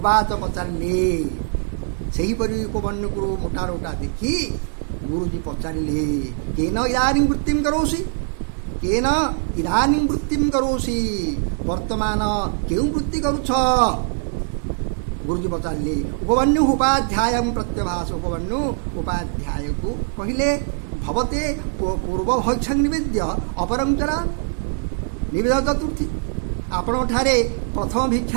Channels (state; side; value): silent; left; 64 dB below the other